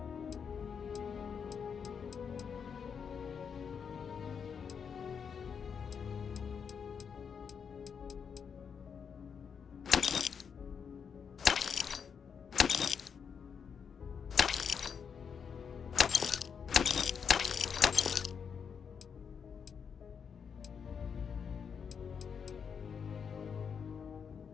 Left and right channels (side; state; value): right; quieter; 6.7 dB